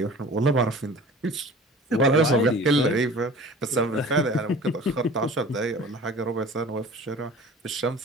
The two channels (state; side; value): normal; both; correlation 0.43